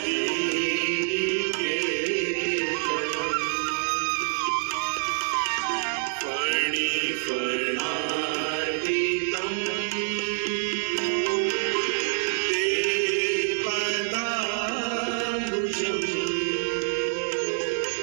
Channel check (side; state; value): left; silent; digital silence